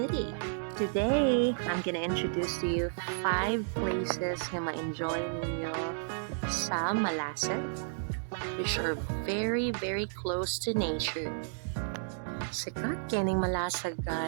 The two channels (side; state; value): left; silent; digital silence